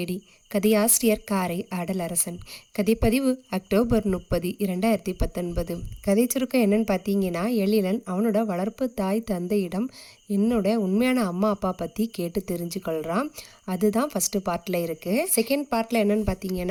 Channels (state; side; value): identical; both; correlation 1.00